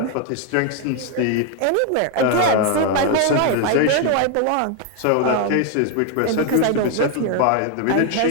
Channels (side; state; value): both; different; correlation 0.01